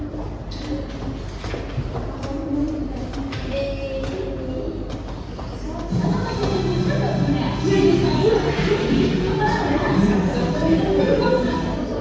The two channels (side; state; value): both; identical; correlation 1.00